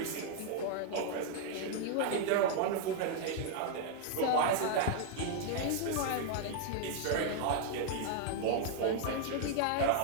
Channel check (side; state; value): both; different; correlation 0.00